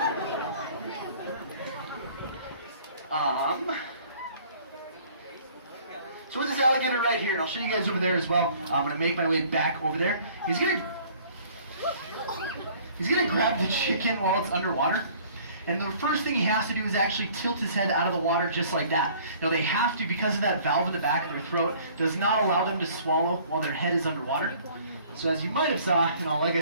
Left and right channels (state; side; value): inverted; both; correlation -0.54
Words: So with this alligator right here, and I'll show you guys over there as well. I'm going to make my way back over there. He's going to grab the chicken while it's underwater. And the first thing he has to do is actually tilt his head out of the water just like that. Now they have to, because of that valve in the back of their throat, does not allow them to swallow while their head is underwater. So as you might have saw, like I